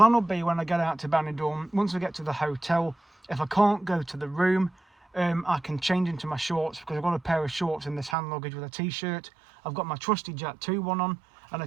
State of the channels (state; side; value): drops out; left; at 8.2 s